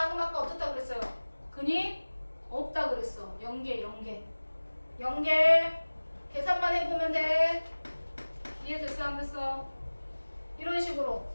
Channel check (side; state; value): both; inverted; correlation -1.00